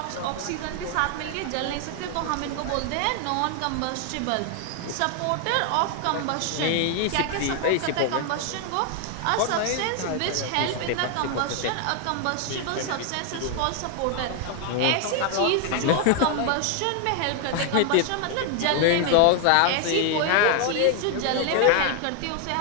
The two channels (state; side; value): different; both; correlation 0.00